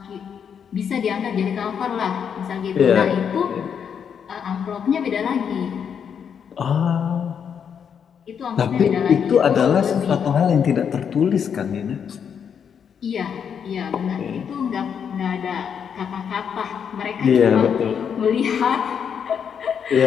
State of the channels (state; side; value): quieter; right; 7.5 dB